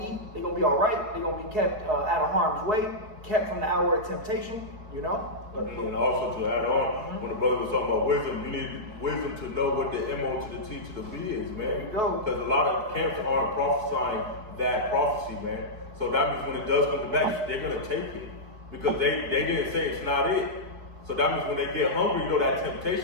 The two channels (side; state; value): left; late; 4.7 ms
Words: to eat. They're going to be all right. They're going to be kept out of harm's way, kept from the hour of temptation, And also to add on, when the brother was talking about wisdom, you need wisdom to know what the M.O. to the T to the B is, man. There you go. Because a lot of camps aren't prophesying that prophecy, man. So that means when it does come to pass, they're going to take it. Because they didn't say it's not it. So that means when they get hungry, that